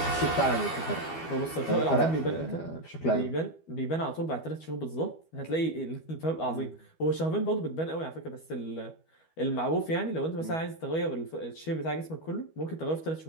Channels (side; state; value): right; late; 12 ms